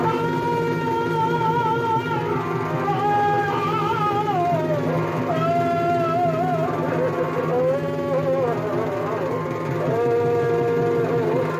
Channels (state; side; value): identical; both; correlation 1.00